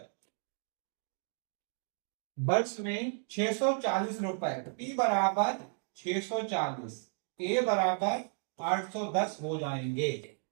वर्ष में 640 रुपए, P बराबर 640, A बराबर 810 हो जाएंगे।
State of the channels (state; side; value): silent; left; 55 dB below the other